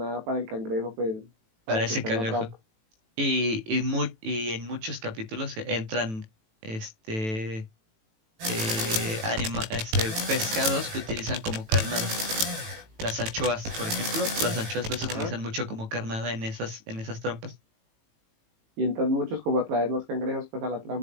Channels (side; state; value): left; late; 18 ms